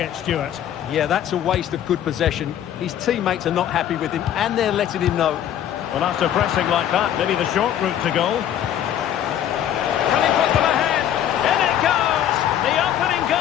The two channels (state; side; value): quieter; right; 10.6 dB